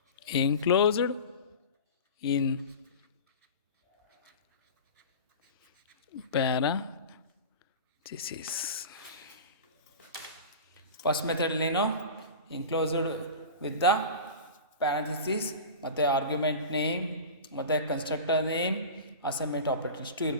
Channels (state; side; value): inverted; both; correlation -0.32